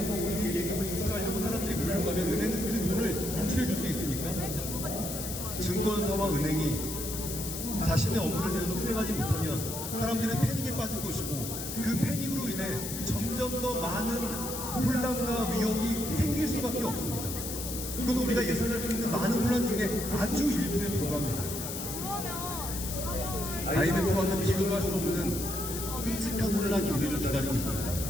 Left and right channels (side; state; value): left; noise; hiss, 6 dB below the sound